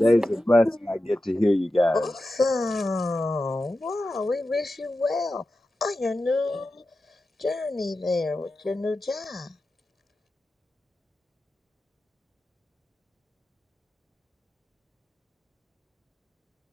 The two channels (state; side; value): normal; both; correlation 0.92